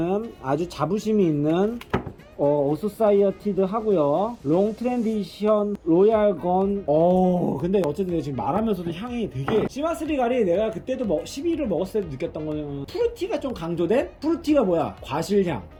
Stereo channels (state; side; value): identical; both; correlation 1.00